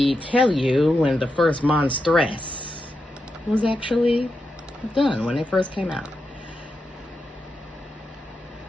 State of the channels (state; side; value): normal; both; correlation 0.87